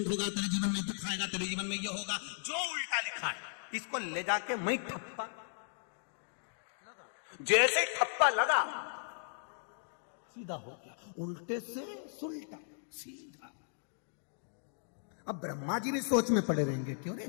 होगा, तेरे जीवन में दुख आएगा, तेरे जीवन में ये होगा, जो उल्टा लिखा है इसको ले जाके मैं ठप्पा, जैसे ठप्पा लगा सीधा हो गया, उल्टे से सुलटा सीधा। अब ब्रह्मा जी भी सोच में पड़े रहेंगे, क्यों रे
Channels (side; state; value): right; silent; digital silence